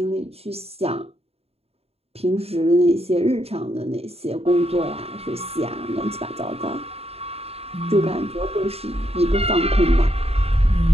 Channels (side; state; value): left; late; 0.29 ms